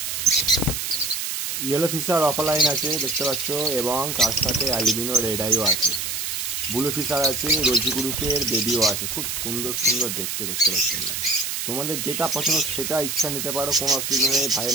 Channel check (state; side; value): noise; right; hiss, 3 dB below the sound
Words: ইয়েলো ফিশার অফলাইন আছে দেখতে পাচ্ছ এবং তার সাথে অ্যালবিনো রেড আইও আছে। ব্লু ফিশার আছে, রোজি গ্রুপের বেবিও আছে। খুব সুন্দর সুন্দর দেখতে পাচ্ছ। তোমাদের যেটা পছন্দ সেটা ইচ্ছা নিতে পারো, কোনো অসুবিধা নেই।